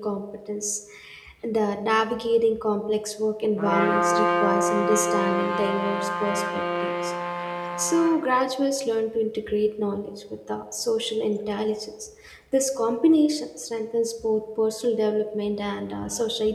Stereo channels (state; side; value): identical; both; correlation 1.00